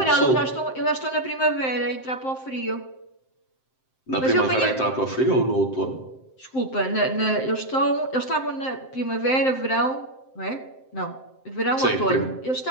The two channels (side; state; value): right; late; 7.7 ms